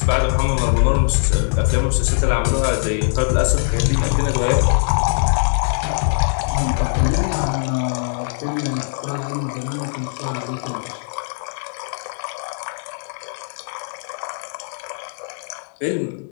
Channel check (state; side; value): silent; right; 65 dB below the other